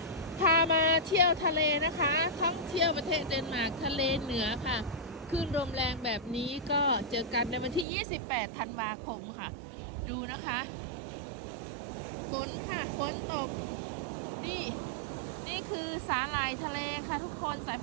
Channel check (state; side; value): drops out; left; at 7.9 s